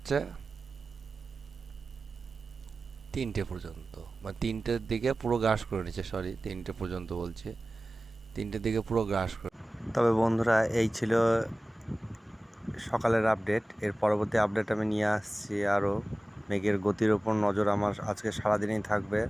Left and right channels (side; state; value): both; normal; correlation 0.96